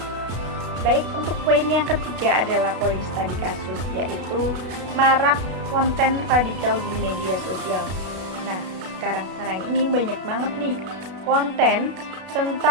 Baik, untuk poin yang ketiga adalah poin studi kasus, yaitu marak konten radikal di media sosial. Nah, sekarang ini banyak banget nih konten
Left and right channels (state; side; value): late; left; 32 ms